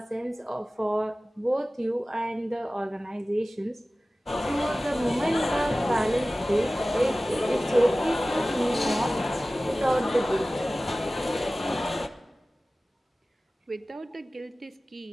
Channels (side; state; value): both; normal; correlation 0.97